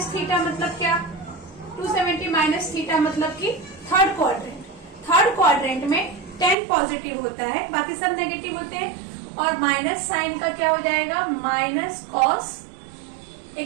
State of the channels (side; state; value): left; drops out; at 6.6 s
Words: थीटा मतलब क्या, 270 माइनस थीटा मतलब कि थर्ड क्वाड्रेंट, थर्ड क्वाड्रेंट में 10 पॉजिटिव होता है, बाकी सब नेगेटिव होते हैं। और माइनस साइन का क्या हो जाएगा, माइनस cos,